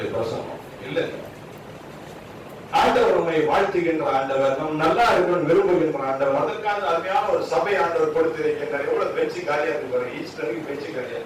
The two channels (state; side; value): identical; both; correlation 1.00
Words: பிரசங்கம். இல்ல, ஆண்டவர் உண்மை வாழ்த்துகின்ற ஆண்டவர், நம் நல்லா இருக்கணும் விரும்புகின்ற ஆண்டவர், அதற்கான அருமையான ஒரு சபை ஆண்டவர் கொடுத்திருக்கின்றார். எவ்வளவு பேச்சு காலியா இருக்கு, ஈஸ்டருக்கு பேச்சு காலியா.